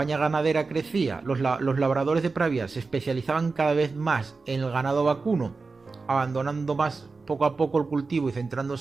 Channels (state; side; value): quieter; left; 4.2 dB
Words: ganadera crecía, los labradores de Pravia se especializaban cada vez más en el ganado vacuno, abandonando más poco a poco el cultivo y